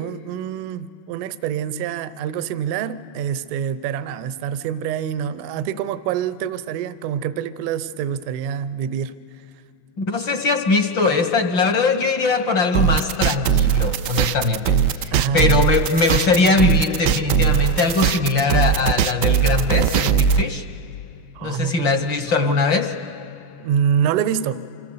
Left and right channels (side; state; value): right; late; 5.2 ms